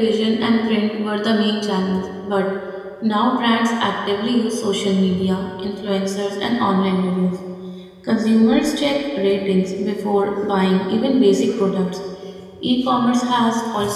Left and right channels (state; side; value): identical; both; correlation 1.00